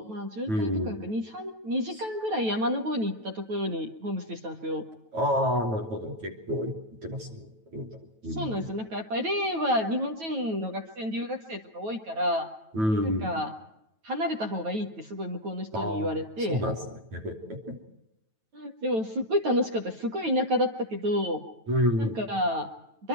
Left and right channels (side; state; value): left; late; 9.2 ms